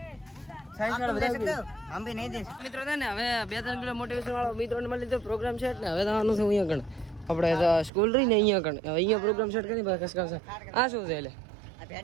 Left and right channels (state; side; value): drops out; left; at 7.9 s